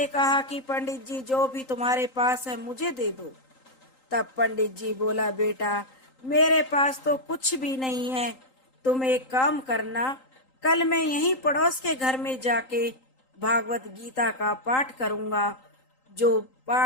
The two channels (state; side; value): late; right; 3.8 ms